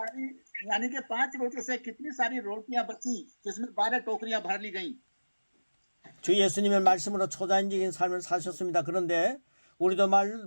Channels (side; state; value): both; inverted; correlation -1.00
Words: यानी कि 5 रोटियों से कितनी सारी रोटियां बची, जिसमें 12 टोकरियां भर ली गईं। 주 예수님의 말씀으로 초자연적인 삶을 사셨습니다. 그런데 우리도